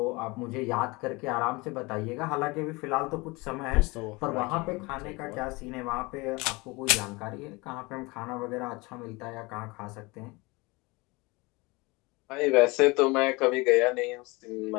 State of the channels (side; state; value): right; quieter; 24.9 dB